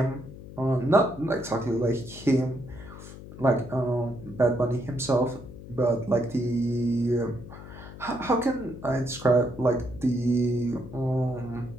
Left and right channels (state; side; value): noise; left; hum, 14 dB below the sound